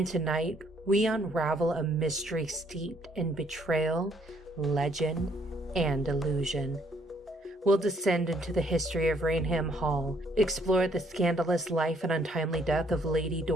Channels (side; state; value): both; normal; correlation 0.67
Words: tonight we unravel a mystery steeped in betrayal, legend, and illusion. We'll descend into the history of Raynham Hall, explore the scandalous life and untimely death of Lady